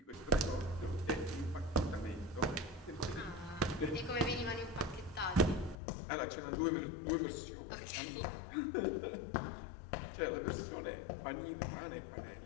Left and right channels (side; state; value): right; drops out; at 5.8 s